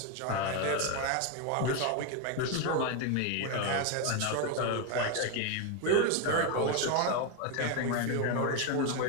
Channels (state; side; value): different; both; correlation 0.02